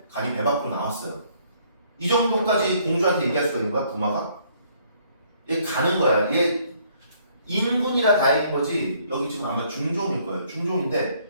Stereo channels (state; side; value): inverted; both; correlation -0.65